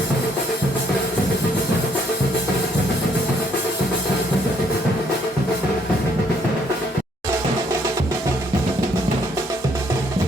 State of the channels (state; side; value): normal; both; correlation 0.68